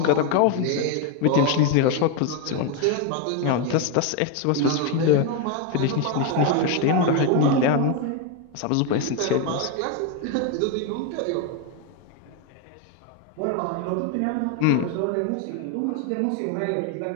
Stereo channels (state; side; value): different; both; correlation 0.02